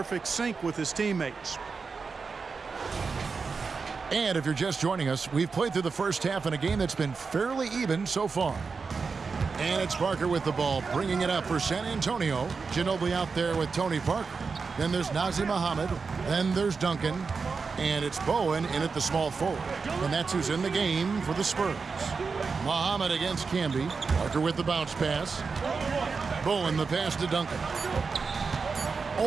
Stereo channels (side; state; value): left; quieter; 4.9 dB